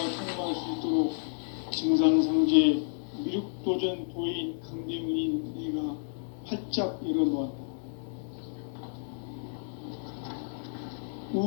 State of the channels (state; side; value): silent; right; digital silence